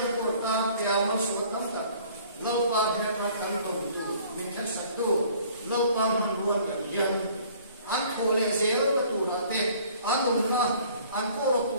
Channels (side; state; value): both; inverted; correlation -0.54